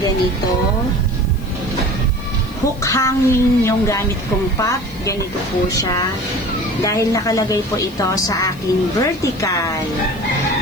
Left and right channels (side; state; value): left; noise; hiss, 24 dB below the sound